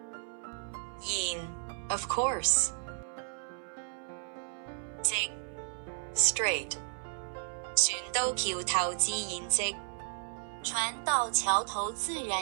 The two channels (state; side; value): silent; left; 55 dB below the other